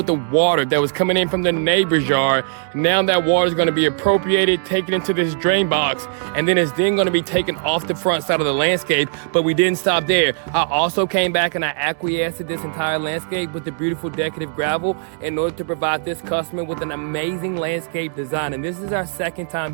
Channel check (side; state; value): left; silent; digital silence